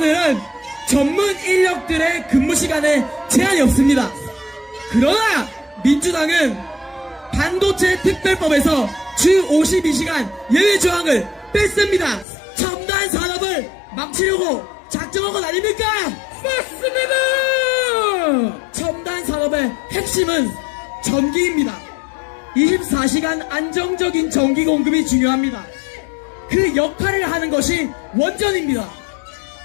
전문 인력들의 근무 시간에 제한이 없습니다. 그러나 민주당은 반도체 특별법에서 주 52시간 예외 조항을 뺐습니다. 첨단 산업을 망치려고 작정한 것 아닙니까? 맞습니다. 첨단 산업의 핵심은 전기입니다. 24시간 안정적인 전기 공급이 중요합니다. 그 역할을 하는 것이 원전입니다.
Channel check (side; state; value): right; drops out; at 12.2 s